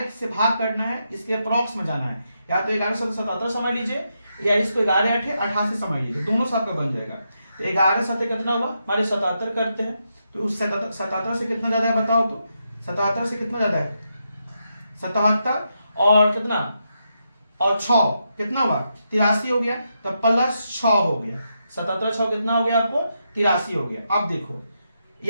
से भाग करना है, इसके अप्रॉक्स में जाना है, या तो 11 से 77 समझ लीजिए, या इसको 11 8 88 समझ लीजिए, दोनों से आपका बन जाएगा। तो 11 7 कितना हुआ हमारे 77 करते हैं, तो उस 77 से कितना ज्यादा है बताओ तो, 77 से कितना ज्यादा है 77, और कितना और 6 कितना हुआ 83 हो गया, तो +6 हो गया, 77 6 कितना हो गया आपको 83 हो गया। अब देखो,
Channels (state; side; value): inverted; both; correlation -0.83